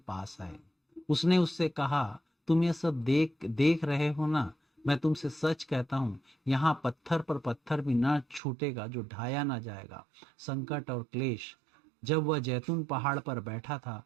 आए। उसने उससे कहा, तुम ये सब देख देख रहे हो ना, मैं तुमसे सच कहता हूँ, यहाँ पत्थर पर पत्थर भी ना छूटेगा जो ढाया ना जाएगा। संकट और क्लेश। जब वह जैतून पहाड़ पर बैठा था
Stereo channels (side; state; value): left; drops out; at 8.4 s